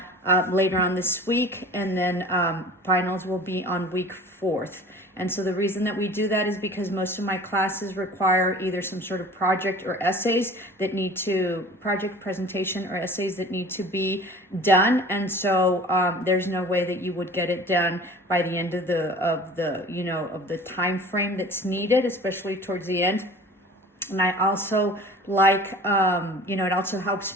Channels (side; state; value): both; normal; correlation 0.43